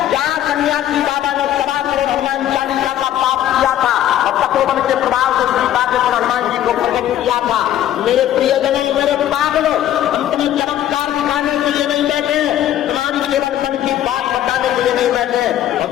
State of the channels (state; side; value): quieter; right; 11.9 dB